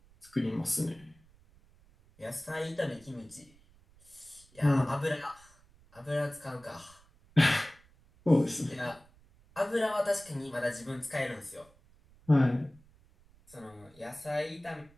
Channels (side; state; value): right; noise; rumble, 28 dB below the sound